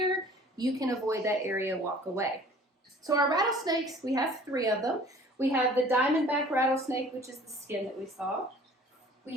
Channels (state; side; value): normal; both; correlation 0.50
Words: You can avoid that area, walk away. So our rattlesnakes, we have 3 of them. We have the diamondback rattlesnake, which is the skin that we saw. We